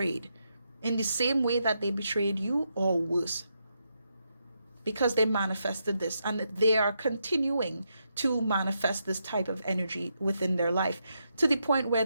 in the same way that they betrayed you, or worse, because they manifested this, and they are continuing to manifest this type of energy within their life, to the point where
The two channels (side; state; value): both; inverted; correlation -0.82